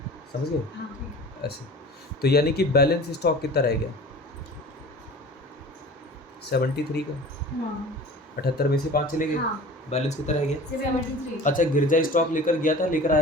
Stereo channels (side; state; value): both; normal; correlation 0.40